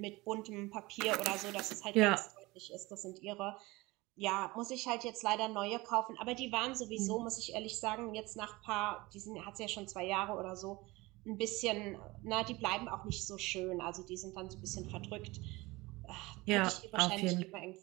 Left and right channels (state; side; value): quieter; left; 21.8 dB